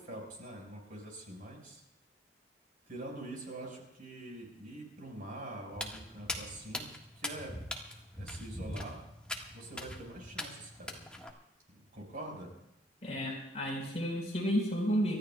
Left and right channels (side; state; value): both; normal; correlation 0.60